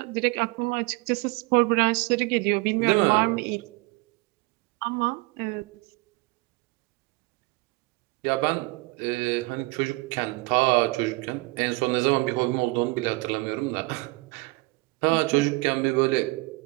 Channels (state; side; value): quieter; left; 24.4 dB